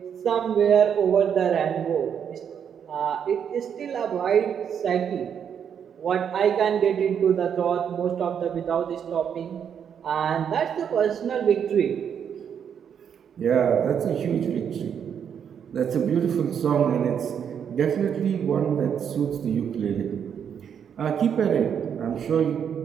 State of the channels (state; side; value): quieter; left; 8.0 dB